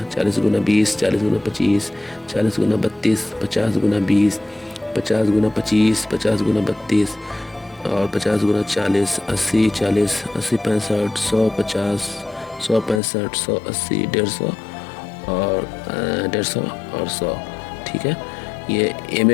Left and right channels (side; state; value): right; drops out; at 13.0 s